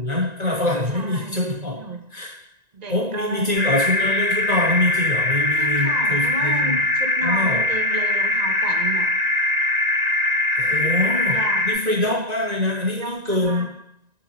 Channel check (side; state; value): left; late; 1.9 ms